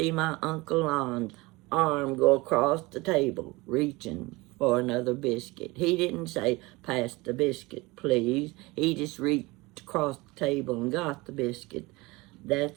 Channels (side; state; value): left; quieter; 22.7 dB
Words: my Uncle Lon's arm go across the table, reaching for another biscuit. He didn't say, "Pass the biscuit, please." He just reached across the table and got the biscuit.